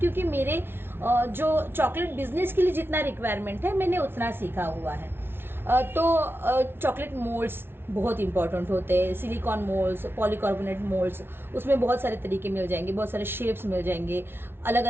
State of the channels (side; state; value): left; late; 0.11 ms